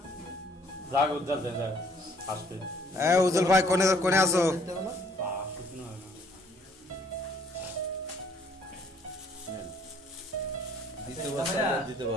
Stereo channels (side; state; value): both; normal; correlation 0.62